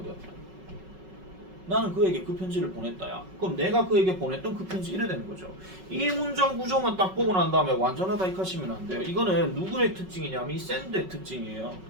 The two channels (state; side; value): late; left; 5.4 ms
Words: 나는 그에게 그 편지를 보냈다야. 그럼 내가 그에게 보냈던 그 편지 이래 되는 거죠. 이 문장 구조만 딱 보고 난 다음에 완전하다 이렇게 하시면 안 돼요. 이거는 누구의 특징이냐면 이 샌드의 특징이에요.